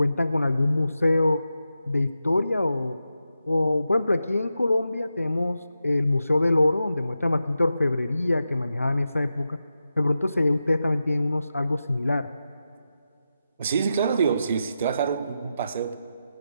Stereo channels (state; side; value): inverted; both; correlation -0.89